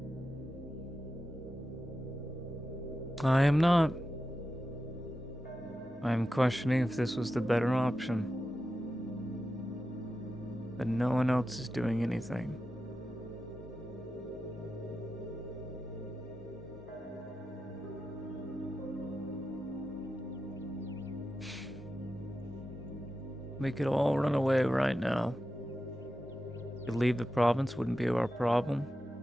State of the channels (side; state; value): both; normal; correlation 0.91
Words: I am not. I am questioning if this was the better option. But no one else is doing anything. We could all run away right now. Could leave the province, wouldn't be our problem.